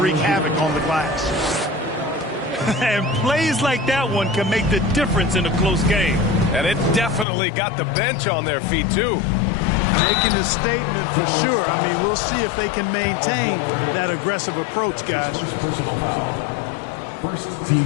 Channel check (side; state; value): right; drops out; at 7.2 s